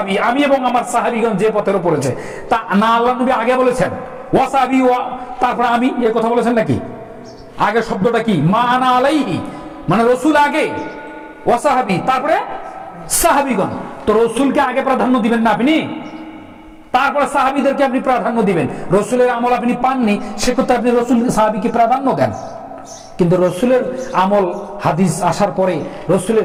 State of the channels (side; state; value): both; identical; correlation 1.00